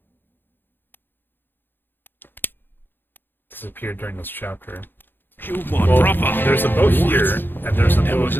Disappeared during this chapter. You my Well, brother. there's a boat here, and there's a There boat. was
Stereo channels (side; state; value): right; late; 0.097 ms